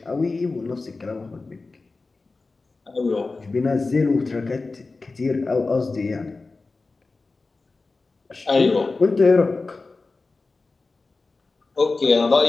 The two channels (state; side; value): quieter; right; 3.7 dB